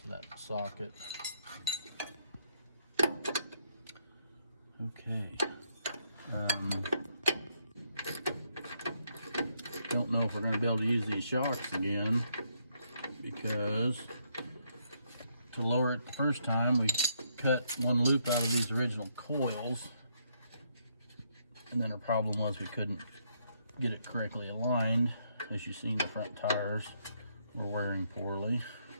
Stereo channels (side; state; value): both; inverted; correlation -0.74